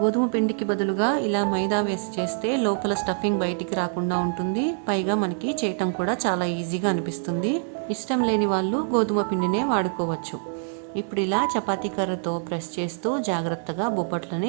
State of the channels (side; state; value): left; silent; 62 dB below the other